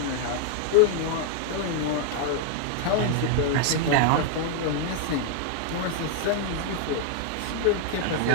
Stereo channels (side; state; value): both; different; correlation 0.00